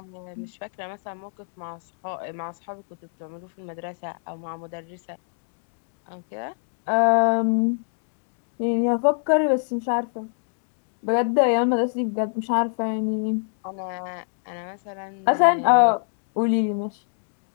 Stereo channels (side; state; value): right; silent; digital silence